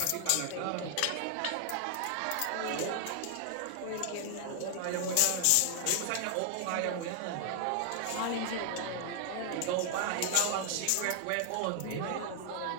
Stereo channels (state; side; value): different; both; correlation 0.00